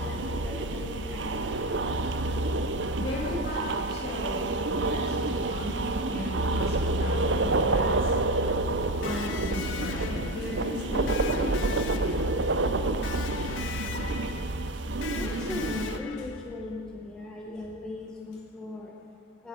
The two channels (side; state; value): both; normal; correlation 0.21